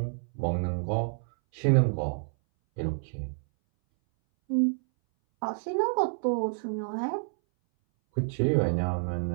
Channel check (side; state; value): left; silent; 59 dB below the other